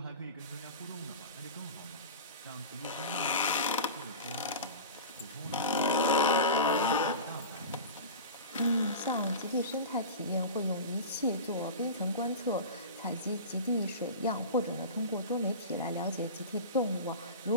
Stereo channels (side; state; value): both; inverted; correlation -0.30